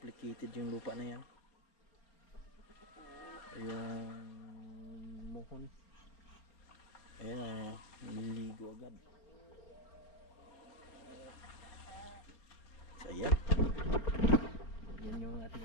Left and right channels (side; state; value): right; late; 4.4 ms